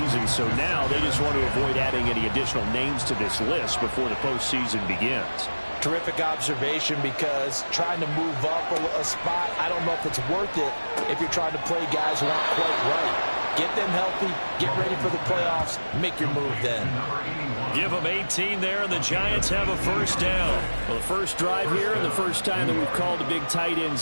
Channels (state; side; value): inverted; both; correlation -1.00